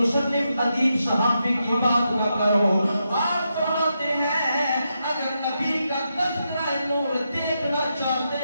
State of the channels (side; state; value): both; inverted; correlation -0.85